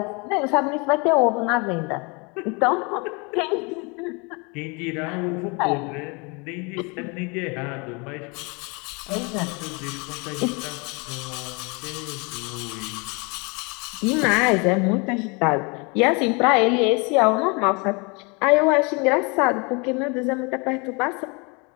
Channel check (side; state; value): right; quieter; 30.2 dB